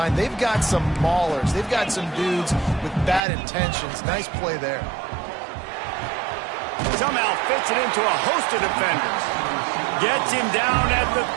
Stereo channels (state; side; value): drops out; left; at 3.2 s